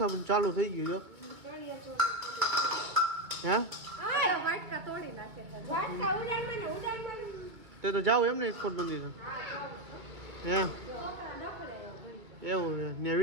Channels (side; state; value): left; late; 2.2 ms